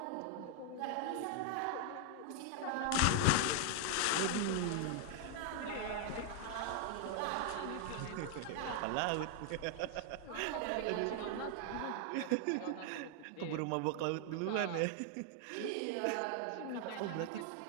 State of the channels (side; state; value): both; different; correlation 0.00